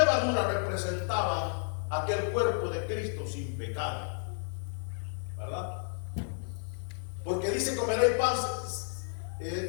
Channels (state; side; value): silent; right; digital silence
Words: representaban aquel cuerpo de Cristo sin pecado, ¿verdad? Porque dice: comeréis pan.